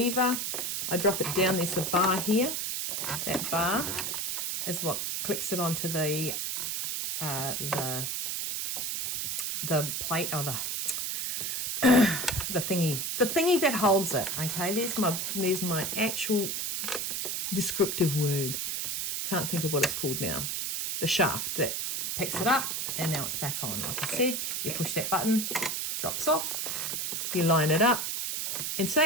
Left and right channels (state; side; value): noise; right; hiss, 2 dB below the sound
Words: I drop it down. There's the bar here. That bar is what clicks it onto the plate, or the thingy that holds it. Okay, there's my actual descriptive word. Can't think of what it's called now. The shaft that picks it up, and now it's back on. Like I said, you push that button, drops off, you line it up, and